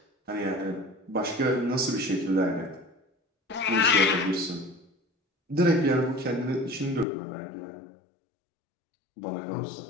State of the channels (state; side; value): drops out; right; at 7.1 s